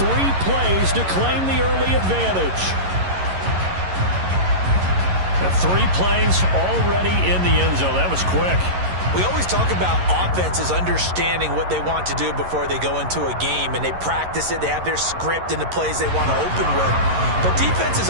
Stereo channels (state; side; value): late; left; 11 ms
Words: plays to claim the early advantage. The 3 plays already in the end zone. That was quick. We always talk about offenses understanding what they want to do before they go into a game, and they practice it. They have their script and the plays they want to open with. But